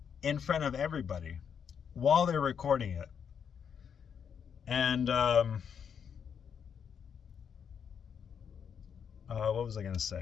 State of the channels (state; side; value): quieter; right; 7.4 dB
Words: in front of everybody while they're recording it. And what was I gonna